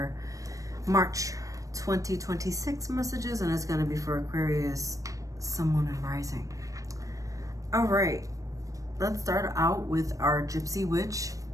March 2026 messages, and it's going to be for Aquarius, Sun, Moon, and Rising. All right, let's start out with our Gypsy Witch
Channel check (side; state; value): left; late; 0.16 ms